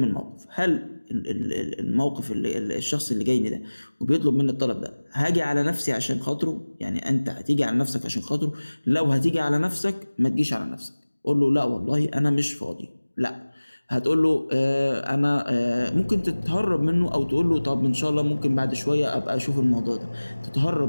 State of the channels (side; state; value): both; inverted; correlation -1.00